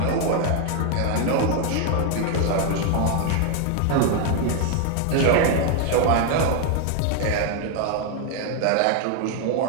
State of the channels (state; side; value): different; both; correlation 0.01